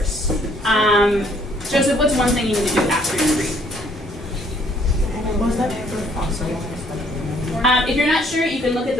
Joseph, what's one thing you need to do after you read? If you're not sure, you can look at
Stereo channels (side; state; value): both; normal; correlation 0.64